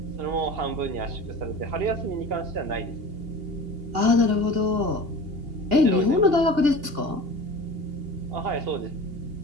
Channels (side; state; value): left; late; 2.8 ms